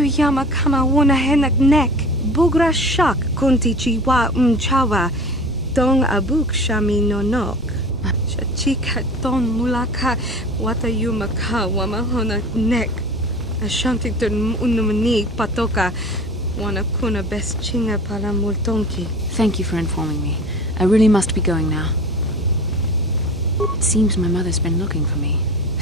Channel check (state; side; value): normal; both; correlation 0.39